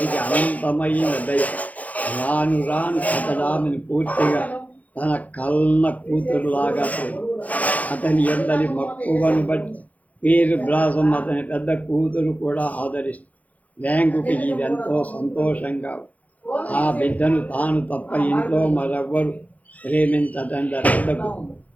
అనంతమైన దయ. రాను రాను అతడు ఆమెను పూర్తిగా తన కన్న కూతురులాగా అతని ఎందరి మక్కువను బట్టి పీర్ బ్లాసం అతని పెద్ద కూతురు కూడా ఆదరిస్తుంది. వ్యాంగుకి ఇదెంతో సంతోషంగా. ఆ బిడ్డను తాను తప్ప ఇంట్లో మరెవ్వరు ప్రేమించటం జరగదు.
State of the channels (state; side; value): late; right; 0.074 ms